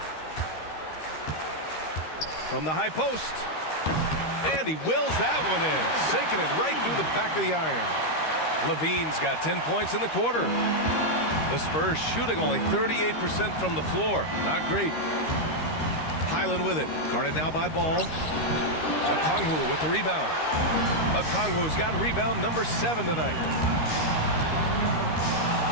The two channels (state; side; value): late; right; 13 ms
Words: From the high post. And he wills that one in, sinking it right through the back of the iron. Levine's got 10 points in the quarter. The Spurs shooting only 38% from the floor. Not great. Highland with it. Guarded now by Ball. Okongwu with the rebound. Okongwu's got rebound number 7 tonight.